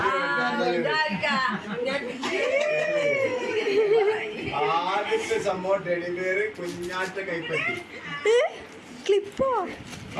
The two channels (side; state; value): both; identical; correlation 1.00